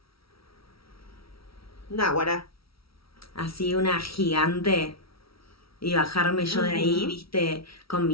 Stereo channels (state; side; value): late; right; 0.75 ms